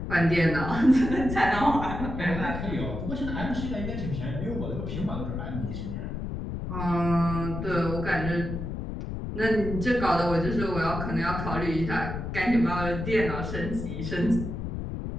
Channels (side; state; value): left; noise; rumble, 5 dB below the sound